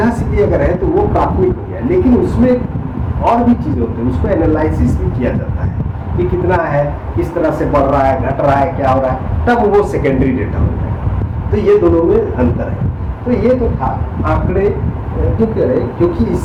सीधी अगर है तो वो प्राथमिक हो गया। लेकिन उसमें और भी चीज़ें होती हैं, उसको एनालिसिस भी किया जाता है कि कितना है, किस तरह से बढ़ रहा है, घट रहा है, क्या हो रहा है, तब वो सेकेंडरी डेटा हो जाएगा। तो ये दोनों में अंतर है। तो ये तो था आंकड़े क्यों कह रहे, क्योंकि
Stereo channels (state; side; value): identical; both; correlation 1.00